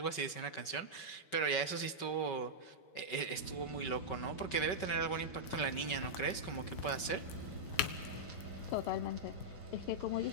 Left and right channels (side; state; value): right; late; 5.3 ms